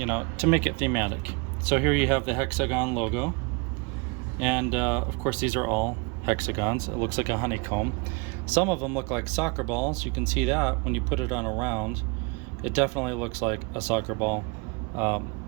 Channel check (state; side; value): quieter; left; 30.1 dB